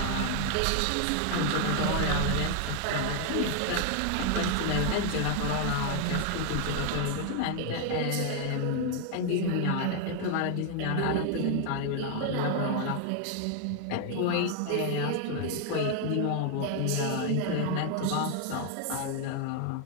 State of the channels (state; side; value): different; both; correlation 0.00